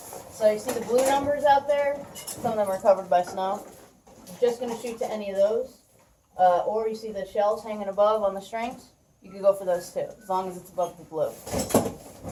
So you see the blue numbers out there? Some of them are covered by snow. You're just going to shoot to any of those. Or you see the shells hanging above on the strings. You can go for those too, as long as it's above the blue.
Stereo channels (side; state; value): both; identical; correlation 1.00